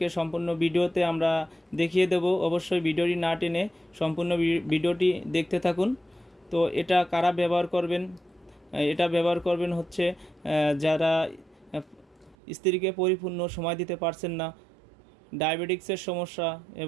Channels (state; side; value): drops out; left; at 12.4 s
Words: সম্পূর্ণ ভিডিওতে আমরা দেখিয়ে দেব। অবশ্যই ভিডিওটি না টেনে সম্পূর্ণ ভিডিওটি দেখতে থাকুন। তো এটা কারা ব্যবহার করবেন? এটা ব্যবহার করবেন হচ্ছে যারা স্ত্রীকে পরিপূর্ণ সময় দিতে পারছেন না, ডায়াবেটিক্সের সমস্যা